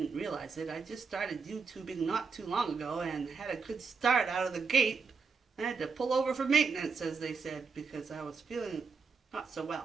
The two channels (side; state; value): left; quieter; 5.1 dB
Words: realize it, I just started YouTubing not too long ago and had a good start out of the gate. I had to pull over for maintenance, as they said, because I was feeling not so